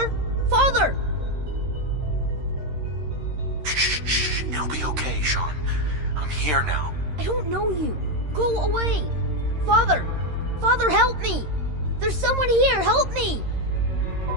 Father! Shh. It'll be okay, Sean. I'm here now. I don't know you. Go away. Father! Father, help me! There's someone here. Help me!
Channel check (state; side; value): late; left; 13 ms